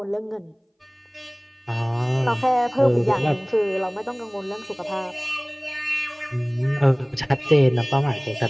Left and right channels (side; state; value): both; identical; correlation 1.00